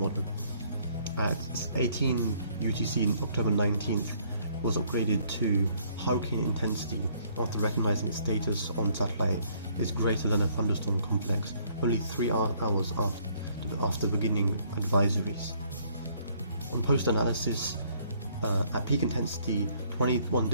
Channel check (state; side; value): inverted; both; correlation -0.64